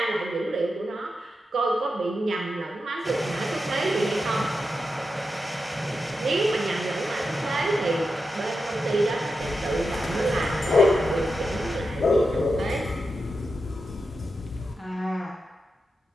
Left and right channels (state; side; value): normal; both; correlation 0.88